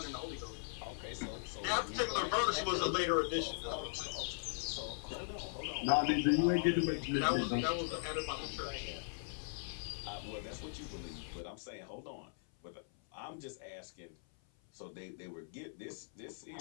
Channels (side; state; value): right; silent; 52 dB below the other